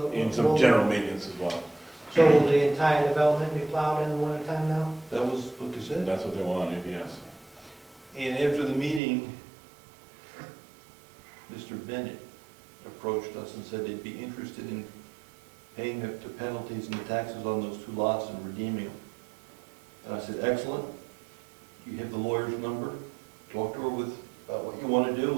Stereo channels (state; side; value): drops out; left; at 9.0 s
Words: And some general maintenance as well. So will the entire development be plowed in the wintertime now? That was what they said. That's what they wanted, yes. And after the meeting, Mr. Bennett approached us and said they'd be interested in paying the penalties and the taxes on those 2 lots and redeeming them. And I said, excellent. You have the lawyer's number. Talk to her about what you want to